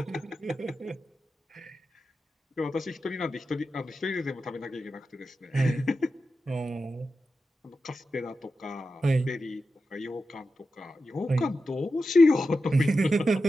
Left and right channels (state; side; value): normal; both; correlation 0.90